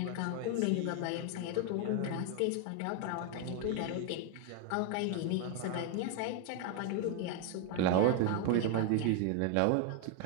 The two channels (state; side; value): different; both; correlation 0.01